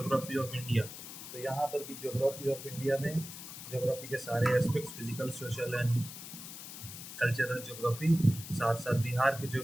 ऑफ इंडिया, तो यहाँ पर भी ज्योग्राफी ऑफ इंडिया में ज्योग्राफी के सारे aspects, physical, social and cultural geography, साथ साथ बिहार की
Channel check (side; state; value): left; noise; hiss, 11 dB below the sound